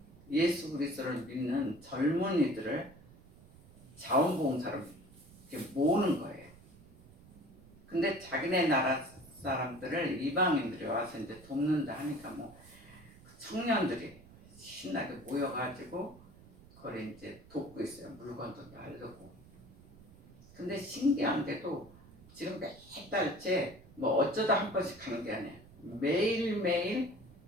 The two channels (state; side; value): noise; right; rumble, 22 dB below the sound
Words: 예수 그리스도를 믿는 젊은이들을 자원봉사로 이렇게 모으는 거예요. 근데 자기네 나라 사람들을 이방인들이 와서 이제 돕는다 하니까 뭐 청년들이 신나게 모여가지고 그걸 이제 돕고 있어요. 물건도 나르고. 근데 신기한 게도 지금 몇 달째 뭐 어쩌다 한 번씩 하는 게 아니에요. 매일매일